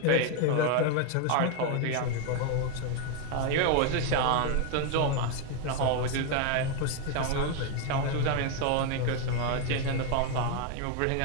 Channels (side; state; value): both; different; correlation 0.01